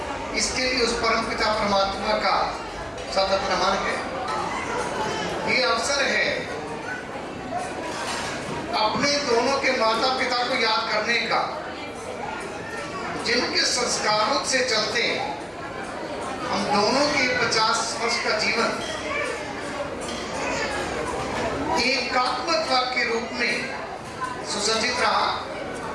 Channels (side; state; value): both; identical; correlation 1.00